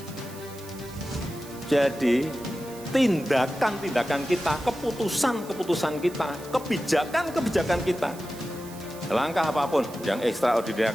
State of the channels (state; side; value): noise; right; hiss, 18 dB below the sound